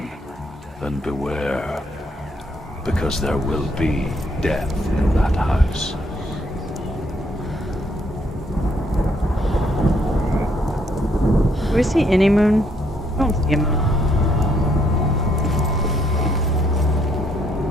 then beware, because there will be death in that house. Do we see any moon? I don't see a moon.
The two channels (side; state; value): both; normal; correlation 0.70